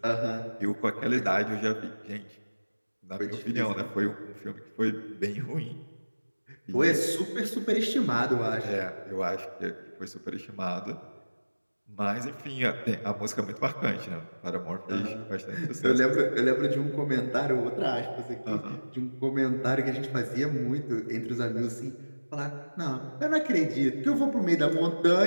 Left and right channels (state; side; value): inverted; both; correlation -1.00